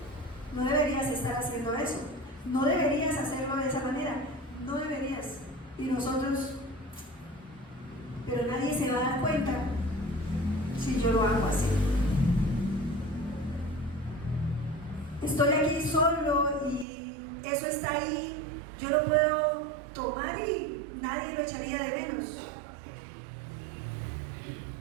no deberías estar haciendo eso, no deberías hacerlo de esa manera, no deberías. Y nosotros, pero nadie se va a dar cuenta si yo lo hago así. Estoy aquí solo y eso está ahí, yo lo puedo tomar y nadie lo echaría de menos.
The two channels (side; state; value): left; drops out; at 16.9 s